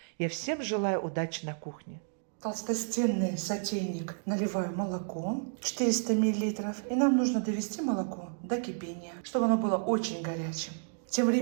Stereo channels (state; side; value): silent; left; digital silence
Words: Я всем желаю удачи на кухне. В толстостенный сотейник наливаю молоко 400 мл. И нам нужно довести молоко до кипения, чтобы оно было очень горячим. Тем